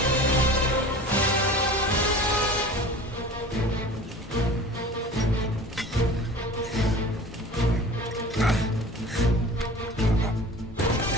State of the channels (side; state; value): both; normal; correlation 0.40